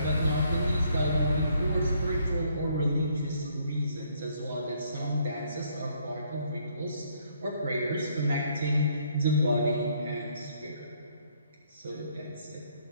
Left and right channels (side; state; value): both; inverted; correlation -0.67